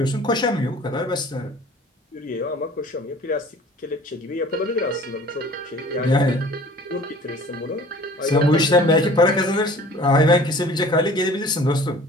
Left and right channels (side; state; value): both; normal; correlation 0.47